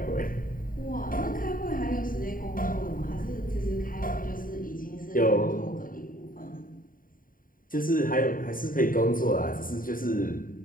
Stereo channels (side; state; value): right; late; 0.41 ms